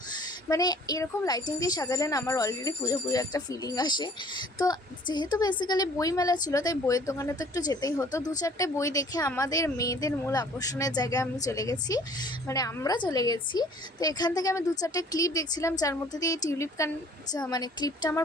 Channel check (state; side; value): normal; both; correlation 0.53